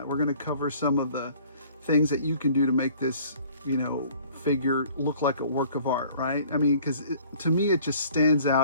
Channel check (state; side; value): inverted; both; correlation -0.54